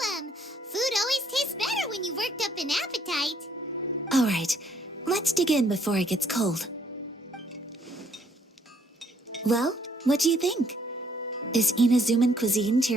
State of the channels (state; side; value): normal; both; correlation 0.66